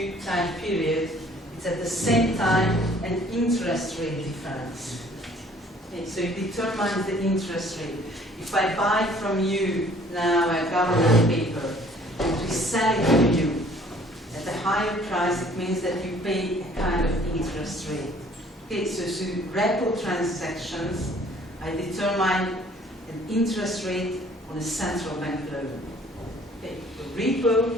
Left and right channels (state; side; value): normal; both; correlation 0.56